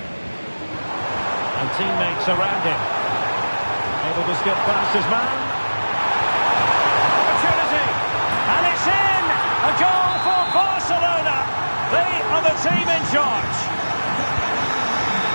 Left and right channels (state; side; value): inverted; both; correlation -1.00